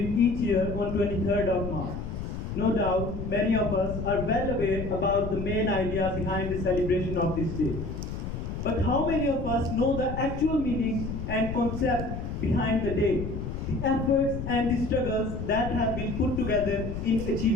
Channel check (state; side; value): noise; left; rumble, 6 dB below the sound